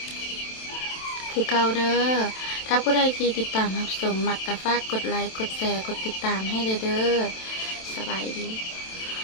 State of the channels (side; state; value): right; late; 27 ms